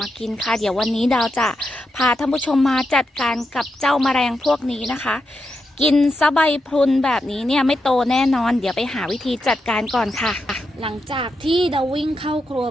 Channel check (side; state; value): both; normal; correlation 0.85